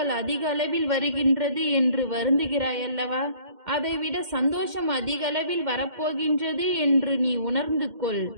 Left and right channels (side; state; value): left; late; 2.1 ms